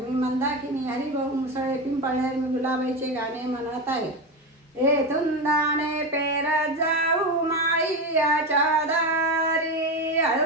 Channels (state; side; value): normal; both; correlation 0.18